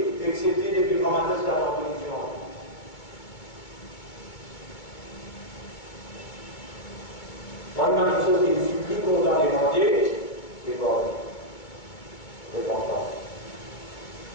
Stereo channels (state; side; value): late; right; 2.3 ms